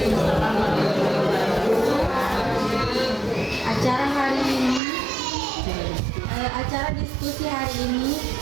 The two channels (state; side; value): drops out; left; at 4.8 s